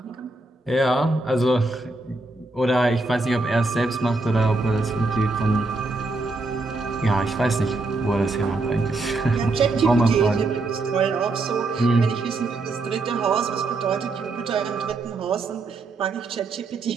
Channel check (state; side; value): quieter; left; 3.2 dB